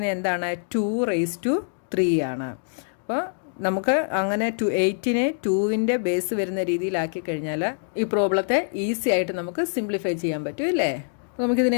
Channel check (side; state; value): right; silent; digital silence